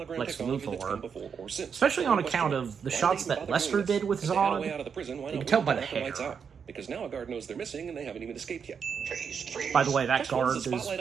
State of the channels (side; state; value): left; quieter; 6.7 dB